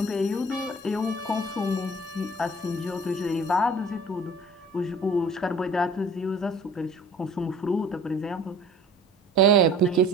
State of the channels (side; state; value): both; normal; correlation 0.47